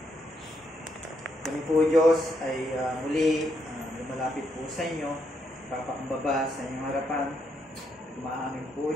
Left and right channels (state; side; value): normal; both; correlation 0.77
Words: Kami po, Diyos, ay muli lumalapit po sa inyo, papakumbaba sa inyong harapan. Umaamin po,